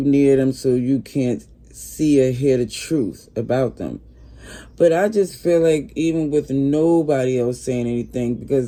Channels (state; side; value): identical; both; correlation 1.00